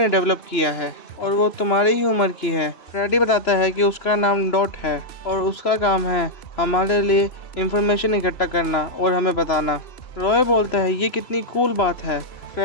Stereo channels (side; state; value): right; late; 3.0 ms